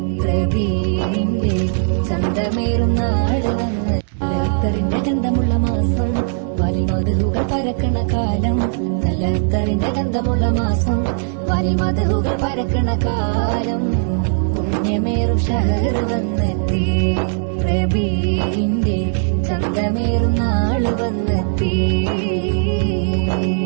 റബീഇന്റെ ചന്തമേറും നാള് വന്നെത്തി. അത്തറിന്റെ ഗന്ധമുള്ള മാസം വലിമധുകൾ പരക്കണ കാലം. നല്ല അത്തറിന്റെ ഗന്ധമുള്ള മാസം വലിമധുകൾ പരക്കണ കാലം. പുണ്യമേറും ഷഹർ വന്നെത്തി, റബീഇന്റെ ചന്തമേറും നാള് വന്നെത്തി.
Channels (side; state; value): left; silent; digital silence